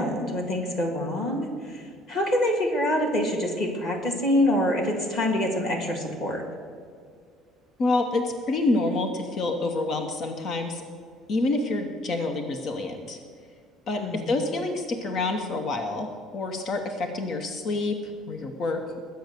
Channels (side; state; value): both; normal; correlation 0.59